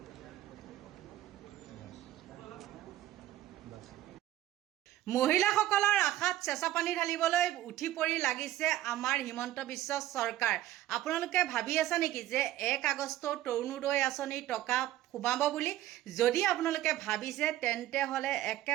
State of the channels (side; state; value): left; quieter; 14.1 dB